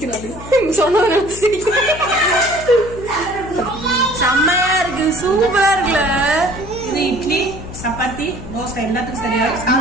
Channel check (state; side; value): noise; left; hum, 13 dB below the sound